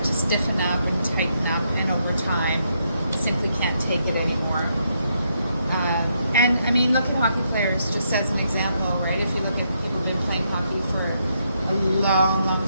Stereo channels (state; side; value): inverted; both; correlation -0.77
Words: to stiffen up and tighten up, and over time simply can't take it anymore. And I mean, look at hockey players just as an example, right? If you look at people who've been playing hockey for a long, long